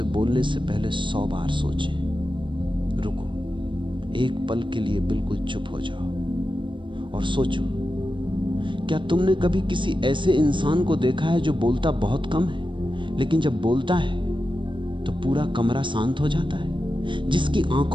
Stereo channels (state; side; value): late; left; 0.24 ms